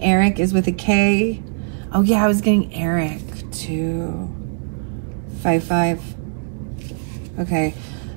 Eric is with a K. Oh yeah, I was getting Eric too. 55. Okay,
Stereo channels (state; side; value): silent; left; digital silence